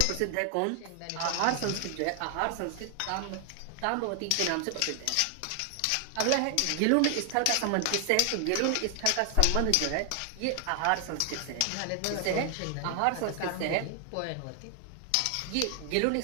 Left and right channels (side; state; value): both; different; correlation 0.00